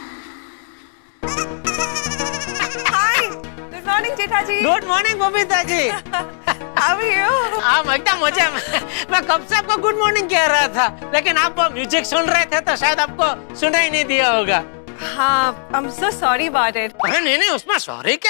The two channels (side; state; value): right; silent; 67 dB below the other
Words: Hi, good morning Jetha ji. Good morning Babita ji. How are you? आप एकदम मजे में। मैं कब से आपको गुड मॉर्निंग कह रहा था, लेकिन आप म्यूजिक सुन रहे थे तो शायद आपको सुना ही नहीं दिया होगा। हाँ, I'm so sorry about it. अरे नहीं नहीं, उसमें सॉरी